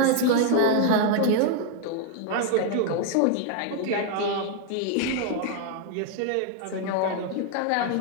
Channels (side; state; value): both; different; correlation 0.00